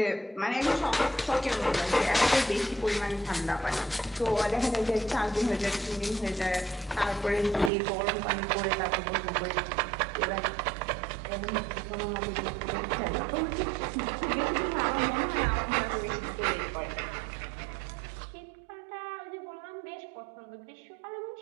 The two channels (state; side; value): drops out; left; at 7.7 s